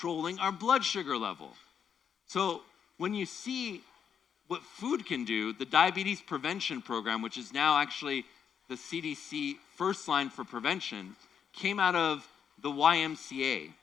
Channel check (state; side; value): quieter; right; 7.7 dB